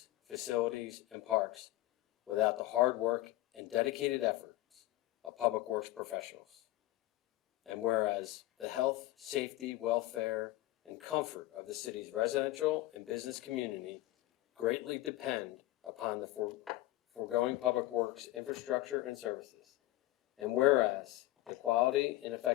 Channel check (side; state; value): right; quieter; 16.8 dB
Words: facilities, and parks without the hard work and dedicated efforts of public works professionals. And whereas the health, safety, welfare, and comfort of the city's residential and business community greatly depend upon the foregoing public works infrastructure and services. And whereas the quality and